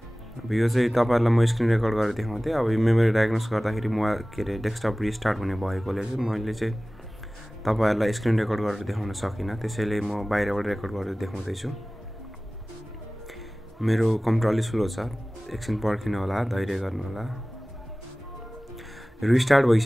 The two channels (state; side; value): normal; both; correlation 0.98